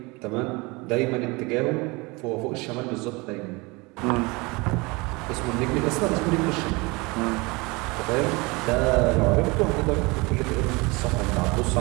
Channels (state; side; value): quieter; left; 25.5 dB